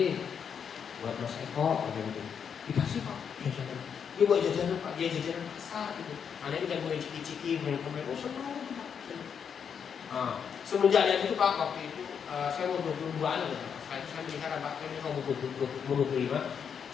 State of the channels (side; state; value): right; quieter; 7.2 dB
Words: Mas Eko, dikasih Pak jajanan. Dia buat jajanan Pak, dia jajanan pasar gitu. Anaknya udah mulai ciki-ciki, main senang Pak. Nah, semenjak dari itu Pak, waktu itu saya mau 22an gitu. Saya menikah Pak, saya mau 25.